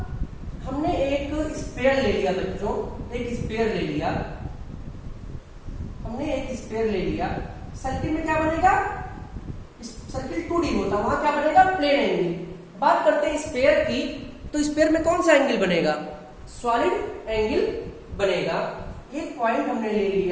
हमने एक स्फीयर ले लिया बच्चों, एक स्फीयर ले लिया, हमने एक स्फीयर ले लिया। सर्किल में क्या बनेगा? सर्किल 2D होता, वहां क्या बनेगा? Plane angle. बात करते हैं स्फीयर की, तो स्फीयर में कौन सा एंगल बनेगा? सॉलिड एंगल बनेगा। एक पॉइंट हमने ले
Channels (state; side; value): identical; both; correlation 1.00